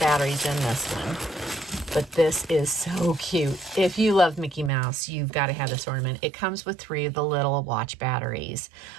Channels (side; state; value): left; drops out; at 4.7 s